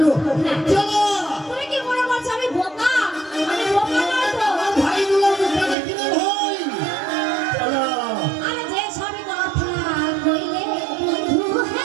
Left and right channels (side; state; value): left; drops out; at 5.8 s